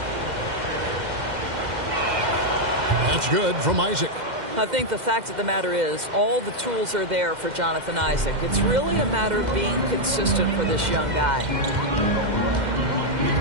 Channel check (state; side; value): late; left; 2.1 ms